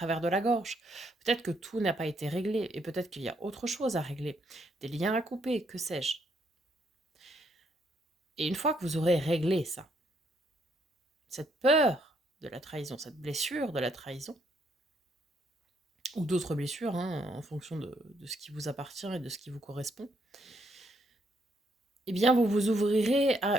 de la gorge. Peut-être que tout n'a pas été réglé, et peut-être qu'il y a autre chose à régler, des liens à couper, que sais-je. Et une fois que vous aurez réglé ça, cette peur de la trahison, cette blessure de la trahison, ou d'autres blessures, hein, en fonction de ce qui vous appartient et de ce qui vous correspond, eh bien, vous vous ouvrirez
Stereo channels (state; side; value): normal; both; correlation 0.73